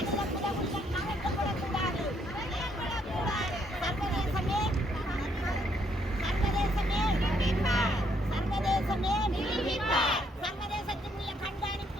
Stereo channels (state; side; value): normal; both; correlation 0.71